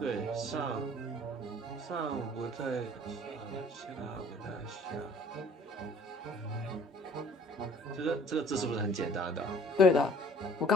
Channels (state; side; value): normal; both; correlation 0.53